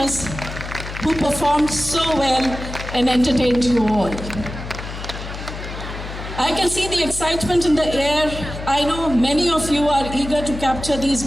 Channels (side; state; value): left; noise; hum, 9 dB below the sound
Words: who performed so well and entertained you all. I can see the excitement in the air. I know many of you are eager to capture